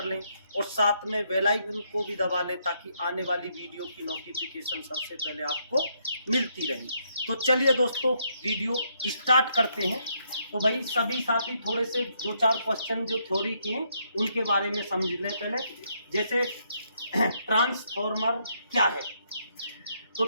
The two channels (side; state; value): both; inverted; correlation -0.75